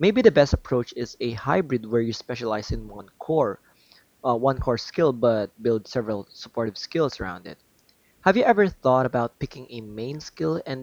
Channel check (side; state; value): both; identical; correlation 1.00